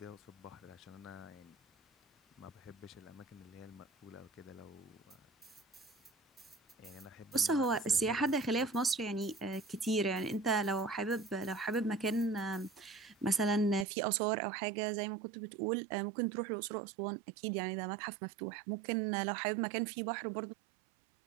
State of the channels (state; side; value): drops out; left; at 13.9 s